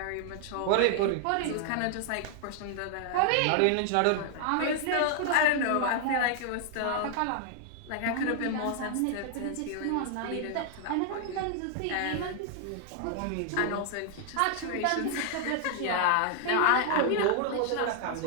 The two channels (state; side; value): different; both; correlation 0.00